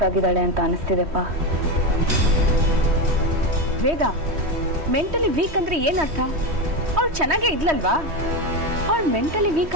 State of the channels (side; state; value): left; late; 3.1 ms